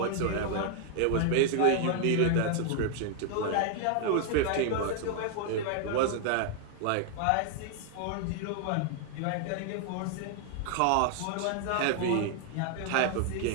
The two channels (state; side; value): different; both; correlation 0.00